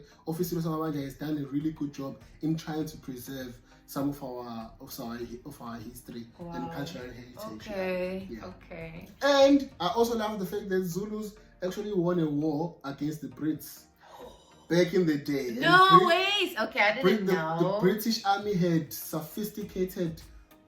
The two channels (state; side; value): identical; both; correlation 1.00